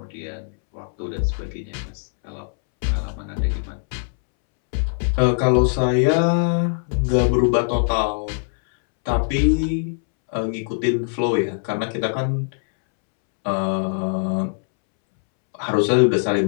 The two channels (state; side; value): silent; right; 64 dB below the other